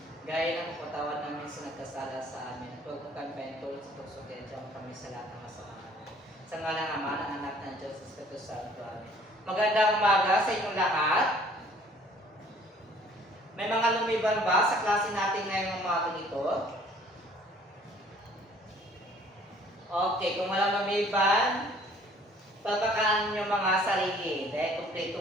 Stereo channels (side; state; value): both; normal; correlation 0.56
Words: Gaya ng kapatawan namin sa nagkasala sa amin, huwag mo kami paintulot sa tukso, kaya diyan kami sa lahat ng masama. Sa ngalan ng Ama ng Anak ng Diyos, Espiritu Santo. Amen. Magandang umaga sa inyong lahat. May mga lumiban ba sa klase natin ngayong umaga nito? Okay, kung walang lumiban, papakaan nyo mga sarili dahil